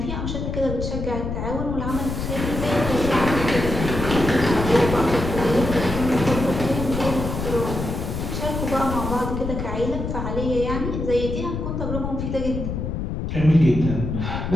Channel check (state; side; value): noise; left; rumble, 4 dB below the sound